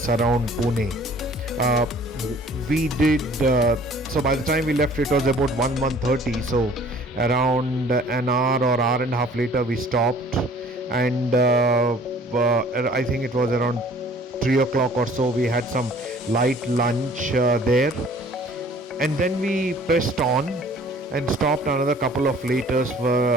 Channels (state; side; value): normal; both; correlation 0.53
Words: Pune. Uh, we did so by the time we left it was about 1:30, so around an hour or hour and a half later we stopped, and I think it was around 3 o'clock or so we had some light lunch there, and then we pressed on and stopped another couple of